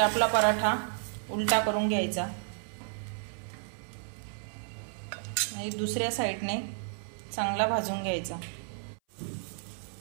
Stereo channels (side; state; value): left; silent; 57 dB below the other